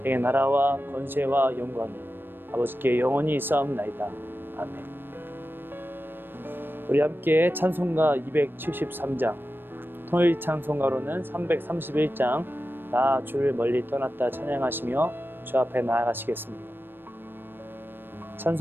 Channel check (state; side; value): late; left; 0.097 ms